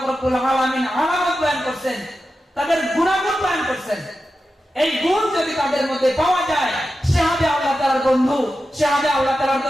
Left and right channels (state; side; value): normal; both; correlation 0.91